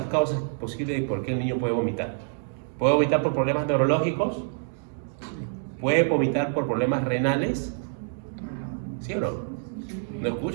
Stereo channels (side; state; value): left; silent; digital silence